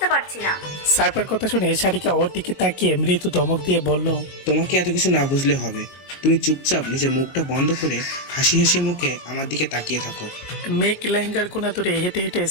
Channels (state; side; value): late; right; 21 ms